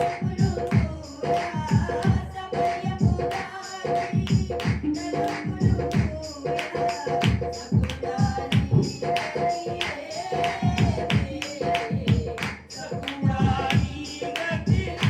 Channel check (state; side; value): identical; both; correlation 1.00